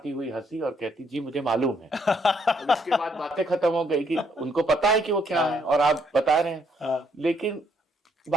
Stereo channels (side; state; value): both; normal; correlation 0.71